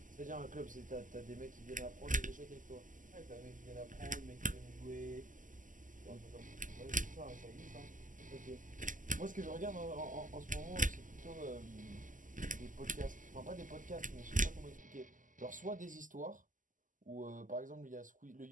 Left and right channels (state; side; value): late; left; 0.38 ms